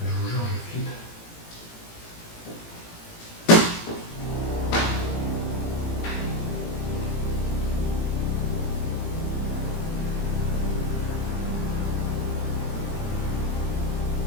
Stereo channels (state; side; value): late; right; 18 ms